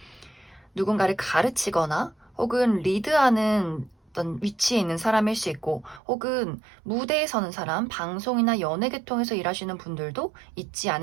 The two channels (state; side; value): drops out; left; at 6.0 s